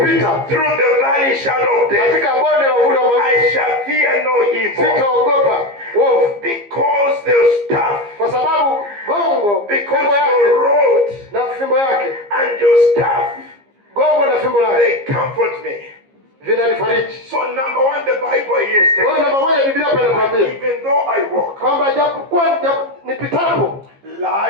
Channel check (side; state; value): left; late; 15 ms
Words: kupita through the valley shadow of death, katika bonde la uvuli wa mauti, I shall fear no evil. sitaogopa uovu, Because the staff, kwa sababu gongo, because fimbo yake your rod na fimbo yake, and your staff, gongo na fimbo yake they comfort me. vinanifariji. So number one, the Bible here is Kwa hiyo telling namba moja Biblia hapa inatuambia even though I walk, kwamba japokuwa nipitapo,